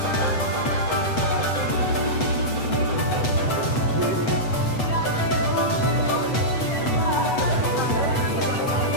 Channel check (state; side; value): late; right; 8.1 ms